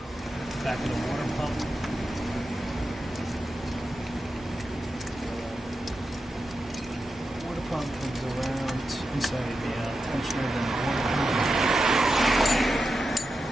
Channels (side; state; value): both; normal; correlation 0.90